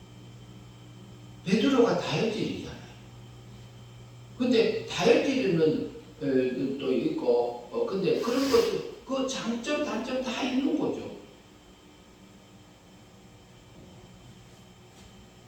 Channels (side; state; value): both; identical; correlation 1.00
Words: 베드로가 다혈질이잖아요. 근데 다혈질은 또 있고 근데 그런 것도 그 장점 단점 다 있는 거죠.